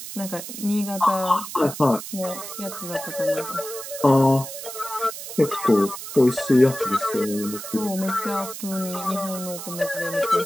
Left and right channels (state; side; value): noise; right; hiss, 10 dB below the sound